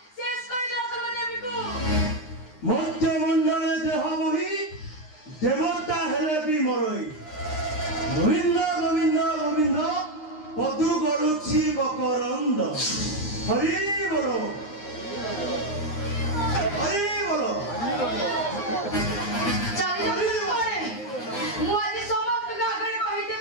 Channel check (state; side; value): late; right; 9.8 ms